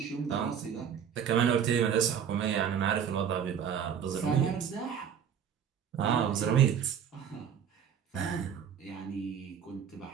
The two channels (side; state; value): left; quieter; 8.2 dB